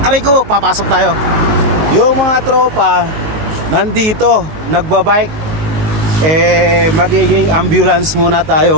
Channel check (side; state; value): left; late; 19 ms